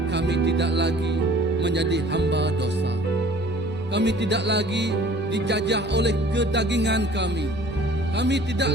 Kami tidak lagi menjadi hamba dosa. Kami tidak lagi dijajah oleh kedagingan kami. Kami tidak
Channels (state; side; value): normal; both; correlation 0.50